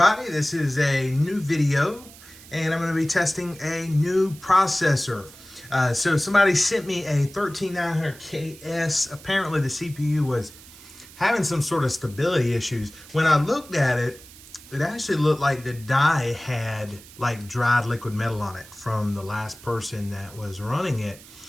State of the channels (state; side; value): noise; right; hiss, 20 dB below the sound